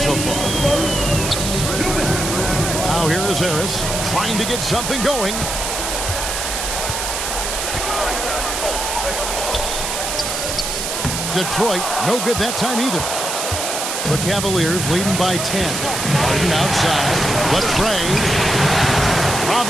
far. Now here is Harris trying to get something going. Detroit, no good that time either. The Cavaliers leading by 10. Harden outside. Latrey.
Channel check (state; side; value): noise; right; hiss, 3 dB below the sound